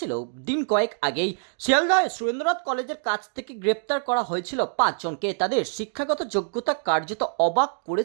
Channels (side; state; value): left; silent; digital silence